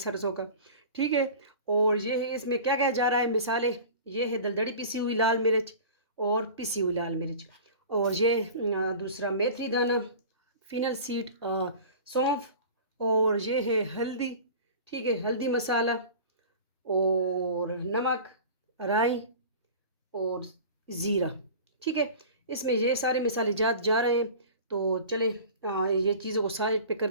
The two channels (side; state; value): both; inverted; correlation -0.38